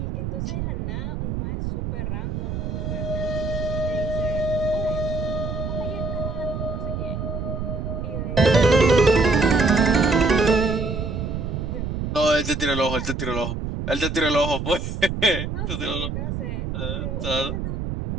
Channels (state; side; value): noise; right; rumble, 4 dB below the sound